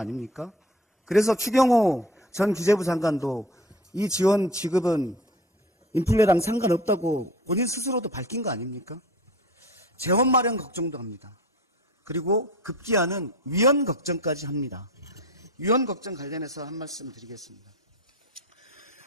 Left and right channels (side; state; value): both; normal; correlation 0.39